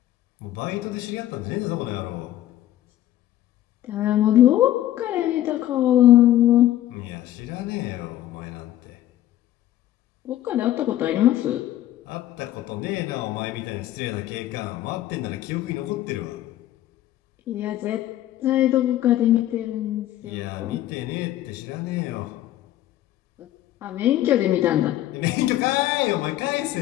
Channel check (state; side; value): quieter; right; 13.4 dB